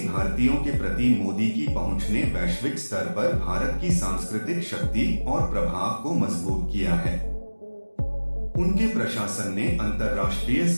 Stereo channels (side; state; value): both; inverted; correlation -1.00